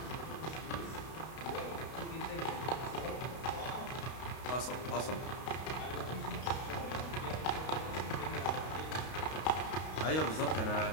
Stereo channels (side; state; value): right; late; 32 ms